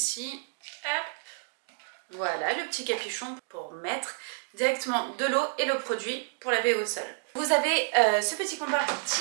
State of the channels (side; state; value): left; silent; digital silence